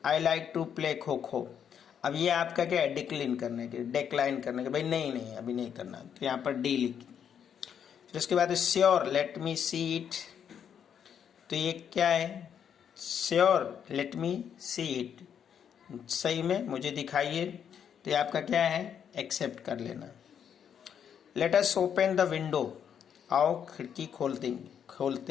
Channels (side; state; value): right; quieter; 8.3 dB